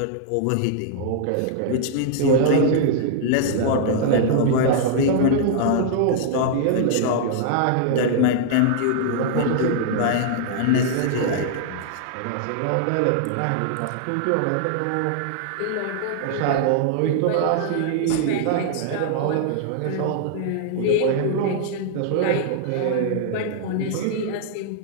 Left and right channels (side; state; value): both; different; correlation -0.01